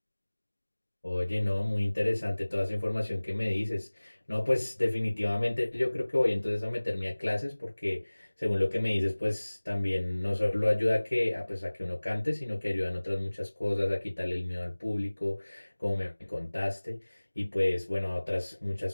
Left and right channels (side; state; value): both; inverted; correlation -1.00